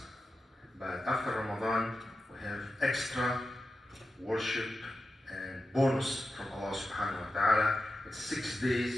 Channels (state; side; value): normal; both; correlation 0.91